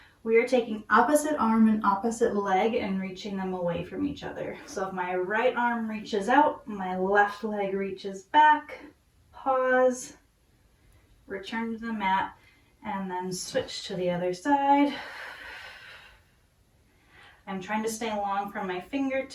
We are taking opposite arm and opposite leg and reaching them away from each other. So if my right arm reaches out, my left leg reaches back, pause, return to the mat, and then switch to the other side. I'm trying to stay long from my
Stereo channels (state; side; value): identical; both; correlation 1.00